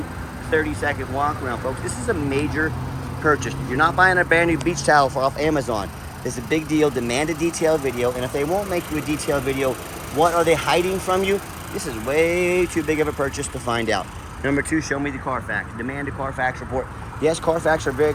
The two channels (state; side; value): identical; both; correlation 1.00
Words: 30-second walk around, folks. This is a major purchase. You're not buying a brand new beach towel off Amazon. This is a big deal. Demand a detailed video. And if they won't make you a detailed video, what are they hiding from you? This is way too big of a purchase to find out. Number 2, show me the Carfax. Demand a Carfax report. Yes, Carfax are very